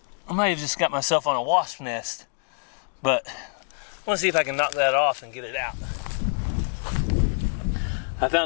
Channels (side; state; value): right; silent; digital silence